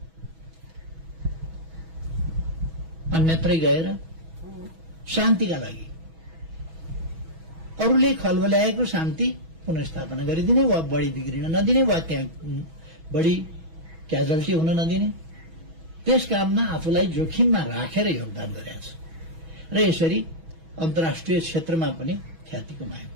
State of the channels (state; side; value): late; left; 6.1 ms